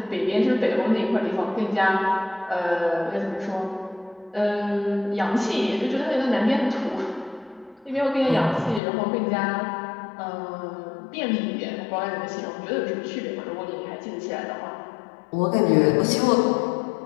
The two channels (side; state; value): right; drops out; at 8.8 s